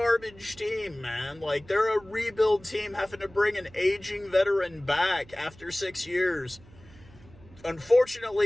team, man. Like, they're a rebuild team having to bring an aging veteran back after 6 years.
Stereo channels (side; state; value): right; noise; hum, 23 dB below the sound